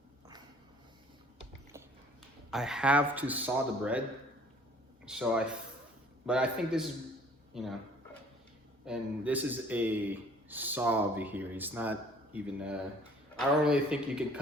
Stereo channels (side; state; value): both; normal; correlation 0.55